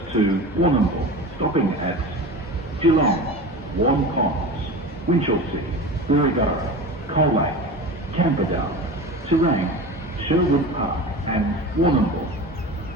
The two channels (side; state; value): both; normal; correlation 0.31